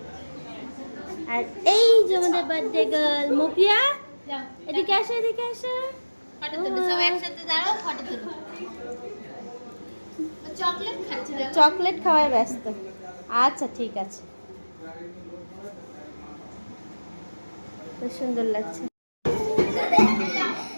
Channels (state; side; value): inverted; both; correlation -1.00